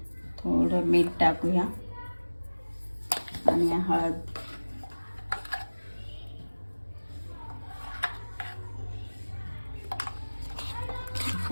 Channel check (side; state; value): both; inverted; correlation -1.00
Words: थोडं मीठ टाकूया आणि हळद.